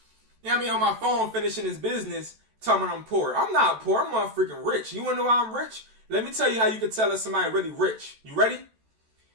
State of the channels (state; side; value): late; left; 14 ms